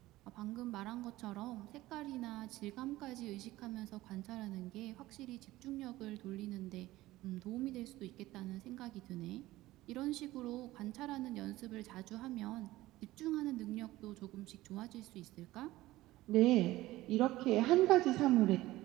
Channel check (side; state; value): left; quieter; 17.2 dB